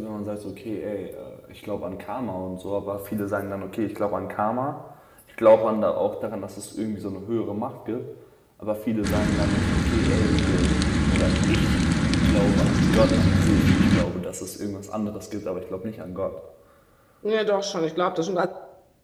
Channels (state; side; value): identical; both; correlation 1.00